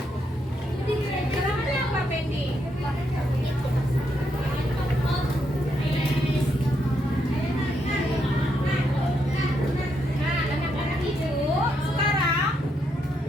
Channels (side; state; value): both; normal; correlation 0.78